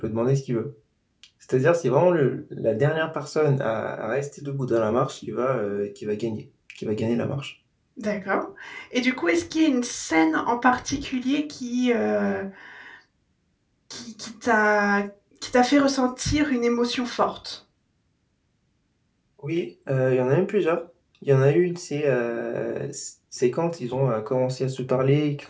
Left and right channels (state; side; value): identical; both; correlation 1.00